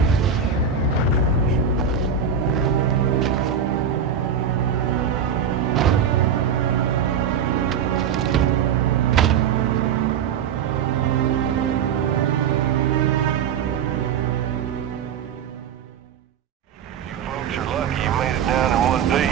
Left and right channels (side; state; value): left; quieter; 7.3 dB